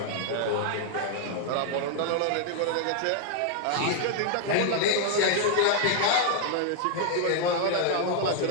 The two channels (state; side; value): different; both; correlation 0.00